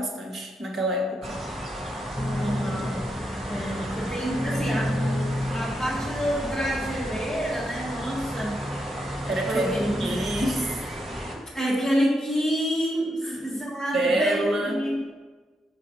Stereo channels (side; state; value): both; normal; correlation 0.82